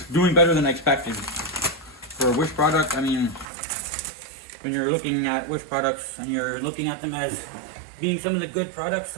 doing better than I expected. For a Wish product, I mean, when you're looking at Wish products and you're looking at them as being some of the good products,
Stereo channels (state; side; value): drops out; left; at 3.5 s